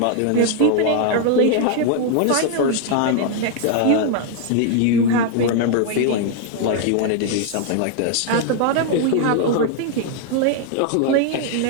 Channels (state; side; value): different; both; correlation 0.00